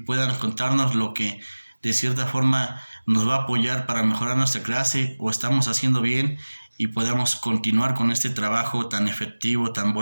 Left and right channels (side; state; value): both; inverted; correlation -1.00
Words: contarnos lo que de cierta forma nos va a apoyar para mejorar nuestra clase o estamos haciendo bien y podamos continuar con este trabajo tan efectivo, tan